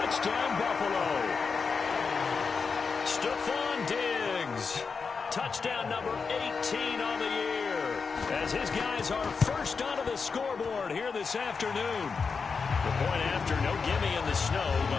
Buffalo. Stephon Diggs. Touchdown number 18 on the year. As his guys are first onto the scoreboard here this afternoon. The point after, no gimme in the snow,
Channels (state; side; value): quieter; right; 5.2 dB